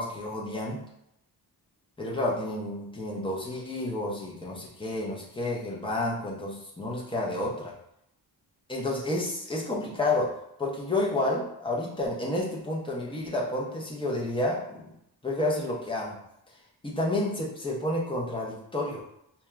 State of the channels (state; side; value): normal; both; correlation 0.31